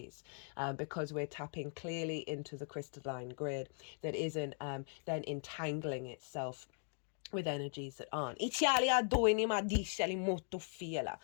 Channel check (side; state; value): right; silent; 51 dB below the other